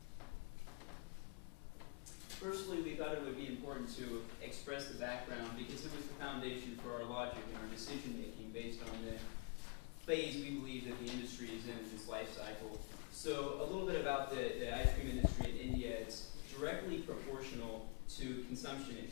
Firstly, we thought it would be important to express the background because it was the foundation for our logic and our decision making based on the phase we believe that the industry is in its life cycle. So a little bit about the ice cream industry in India. It's directly proportional to consumption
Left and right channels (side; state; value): right; quieter; 31.1 dB